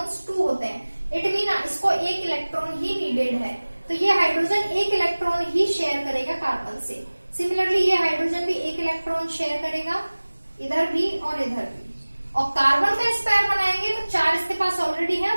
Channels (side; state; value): both; inverted; correlation -1.00